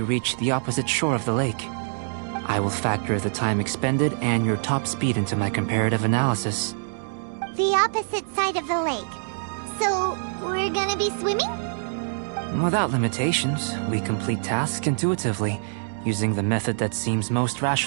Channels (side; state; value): left; silent; digital silence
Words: reach the opposite shore of the lake. I will factor the time expended and your top speed into my comparative analysis. The opposite side of the lake. So, we're gonna be swimming? Without limitations, we complete tasks intuitively, using the method that seems most